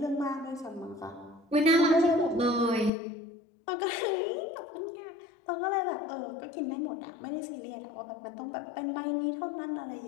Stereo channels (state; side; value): drops out; right; at 2.9 s